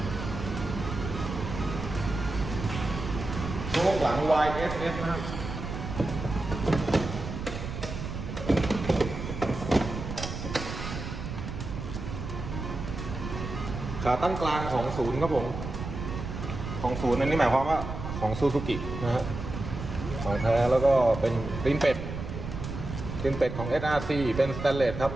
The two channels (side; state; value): right; noise; rumble, 7 dB below the sound